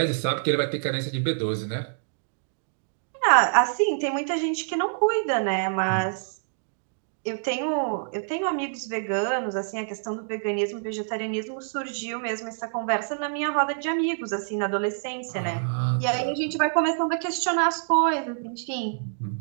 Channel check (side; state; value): left; silent; digital silence